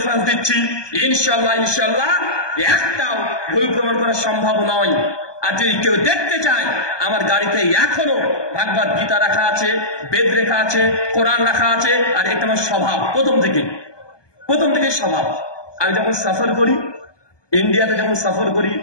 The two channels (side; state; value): right; late; 1.2 ms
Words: দিচ্ছি ইনশাল্লাহ ইনশাল্লাহ একটাও ভুল প্রমাণ করা সম্ভব নয়। আর যদি কেউ দেখতে চায়, আমার গাড়িতে এখনো ভাগবত গীতা রাখা আছে, বেদ লেখা আছে, কোরআন রাখা আছে। আর এটা আমার স্বভাব, প্রথম থেকে স্বভাব। আমি যখন সফর করি, ইন্ডিয়াতে যখন সফর করি